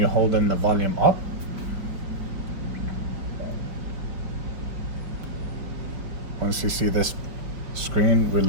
holding the volume up. Once you see this screen,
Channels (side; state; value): left; late; 4.8 ms